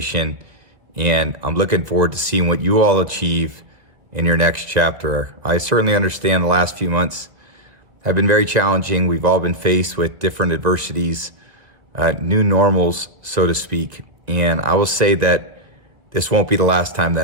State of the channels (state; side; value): late; left; 1.6 ms